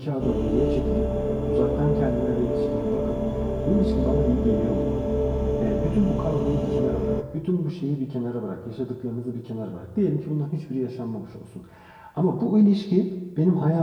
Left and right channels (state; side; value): identical; both; correlation 1.00